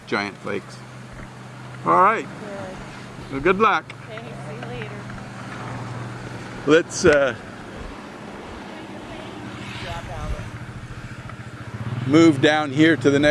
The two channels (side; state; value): both; identical; correlation 1.00